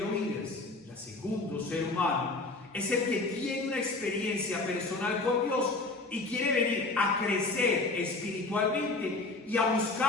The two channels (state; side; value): quieter; right; 3.3 dB